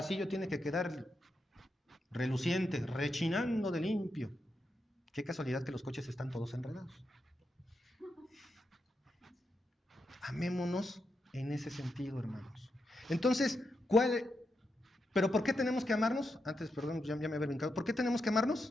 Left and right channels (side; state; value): both; normal; correlation 0.85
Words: tiene que quedar reluciente, rechinando de limpio. Qué casualidad que los coches están todos enredados. Amémonos en ese sentido, hermanos. Entonces, ¿pero por qué tenemos que amarnos? Antes, perdón, ya me había brincado. ¿Por qué tenemos que